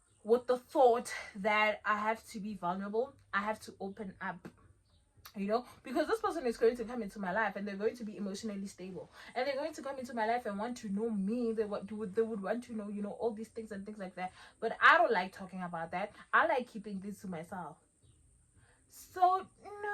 with the thought that I have to be vulnerable, I have to open up, you know, because this person is going to come into my life and they're going to be emotionally stable, and they're going to come into my life and want to know me. They would want to know, you know, all these things and things like that. But I don't like talking about that. I like keeping this to myself. So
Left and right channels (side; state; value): both; identical; correlation 1.00